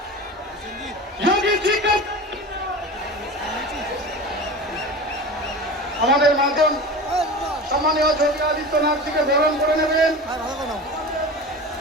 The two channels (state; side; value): normal; both; correlation 0.32